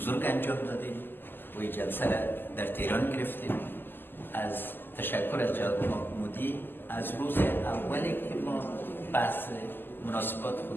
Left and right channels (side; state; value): right; late; 0.094 ms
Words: انجام دادیم و این جلسه را در تهران گرفتیم. از تشکر از جناب مودی از روز اولی که ما بحث مناسبات